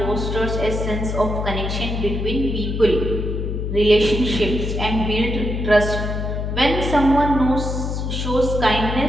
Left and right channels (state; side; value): noise; left; hum, 2 dB below the sound